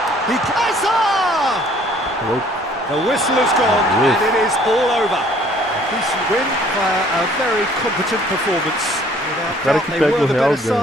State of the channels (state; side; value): normal; both; correlation 0.57